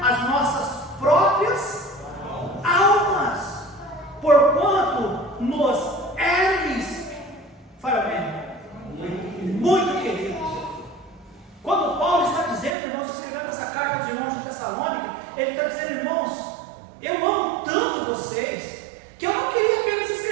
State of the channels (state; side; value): drops out; left; at 12.8 s